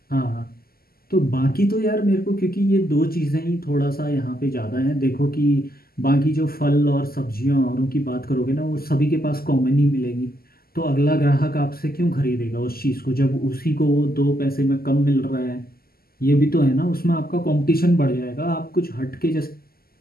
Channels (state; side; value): late; right; 0.44 ms